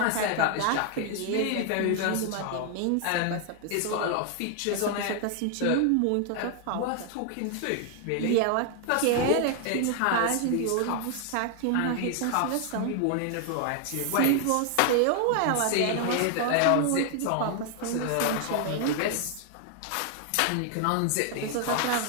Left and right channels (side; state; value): both; different; correlation 0.00